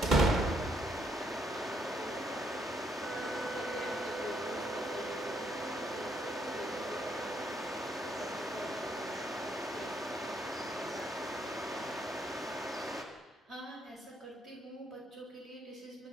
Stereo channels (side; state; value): both; normal; correlation 0.72